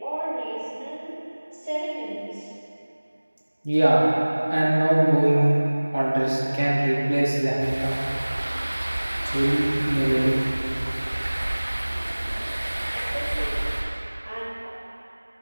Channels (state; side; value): inverted; both; correlation -1.00